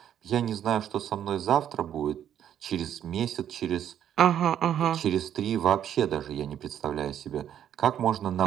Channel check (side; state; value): left; quieter; 10.0 dB